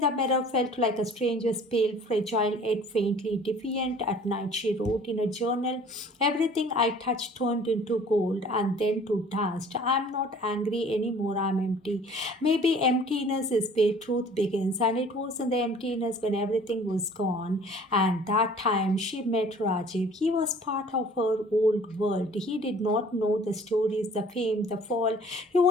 the mirror felt like a stranger's, pale, fragile, yet faintly defiant. At night, she wrote in a journal, everything I touched turned into gold and then to dust. I'm not angry anymore, I'm empty. Maybe emptiness is where truth begins, and it was in the emptiness when everything was gone. And that time she met Rajiv. He was part of her old world. He did not know the stories, the fame, the fall. He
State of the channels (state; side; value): normal; both; correlation 0.50